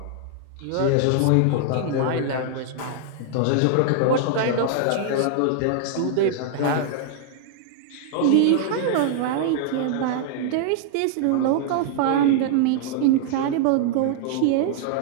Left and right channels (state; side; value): different; both; correlation -0.01